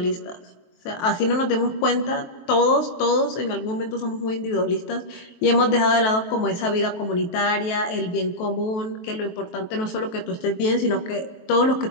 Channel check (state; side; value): late; right; 23 ms